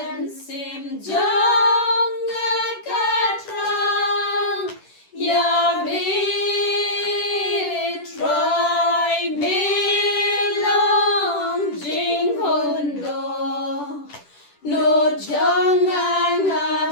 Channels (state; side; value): late; right; 10 ms